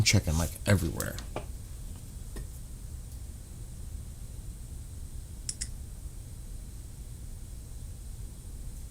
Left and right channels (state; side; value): identical; both; correlation 1.00